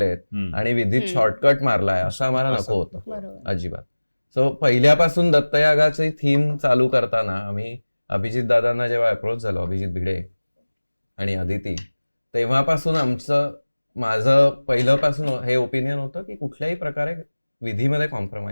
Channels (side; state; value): both; inverted; correlation -1.00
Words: आणि विधीत शॉर्टकट मारलाय असं आम्हाला नको होतं अजिबात. सो पहिल्यापासून दत्तयागाची थीम चालू करताना आम्ही अभिजित दादांना जेव्हा अप्रोच झालो, अभिजित भिडे आणि अदिती, तेव्हापासून माझं पहिल्यापासून हे ओपिनियन होतं की कुठल्याही प्रकारे विधीमध्ये